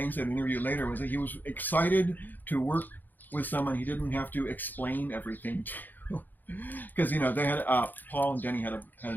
said in an interview later was that he was excited to work with someone he didn't have to explain everything to. Because, they had, Paul and Denny had a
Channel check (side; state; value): right; late; 0.087 ms